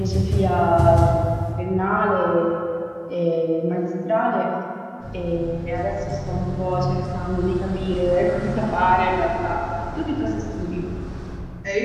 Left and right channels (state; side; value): identical; both; correlation 1.00